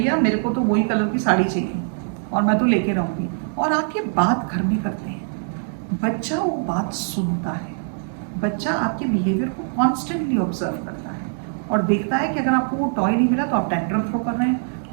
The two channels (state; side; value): silent; left; 64 dB below the other